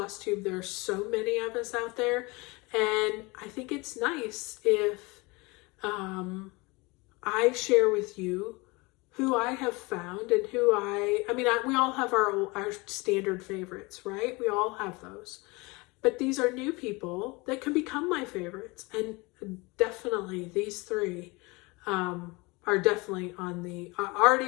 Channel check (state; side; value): quieter; right; 25.4 dB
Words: There are so many of us out there, and I think it's nice if I share with you who I have found and who we all have our standard favorites, right? We all have those. But these are new people that can become my favorites. And definitely these 3 are definitely on the,